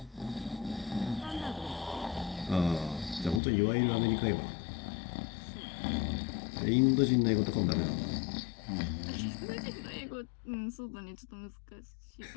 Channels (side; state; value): right; drops out; at 3.4 s